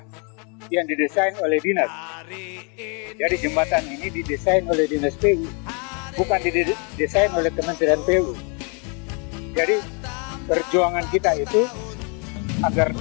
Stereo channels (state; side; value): quieter; right; 36.1 dB